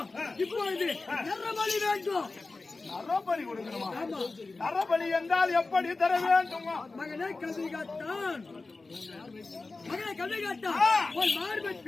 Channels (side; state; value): right; quieter; 3.6 dB